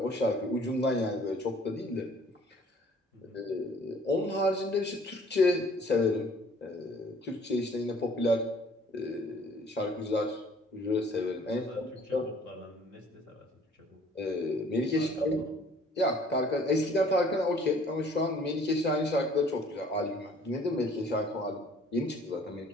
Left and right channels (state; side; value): normal; both; correlation 0.55